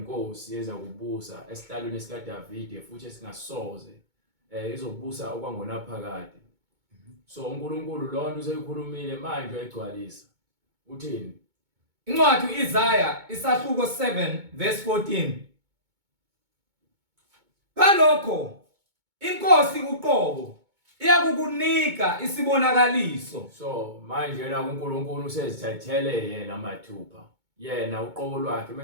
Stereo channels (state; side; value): late; left; 2.2 ms